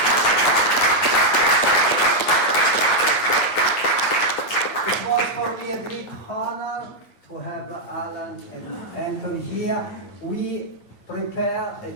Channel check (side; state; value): right; late; 9.1 ms